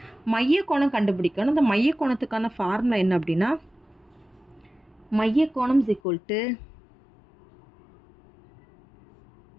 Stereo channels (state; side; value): drops out; right; at 6.0 s